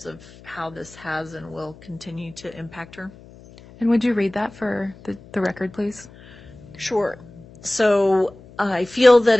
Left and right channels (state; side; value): noise; left; hum, 22 dB below the sound